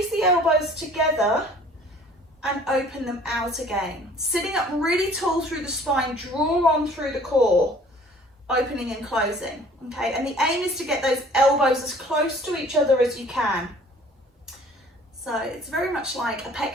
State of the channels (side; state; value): both; normal; correlation 0.52